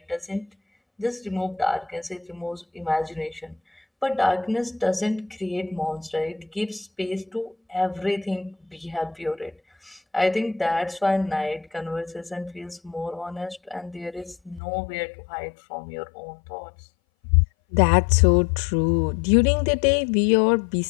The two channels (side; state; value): right; drops out; at 14.6 s